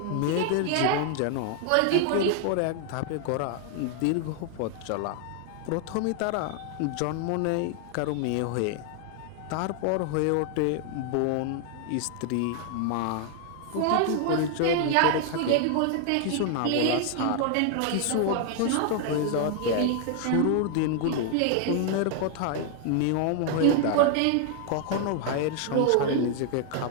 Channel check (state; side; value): different; both; correlation 0.00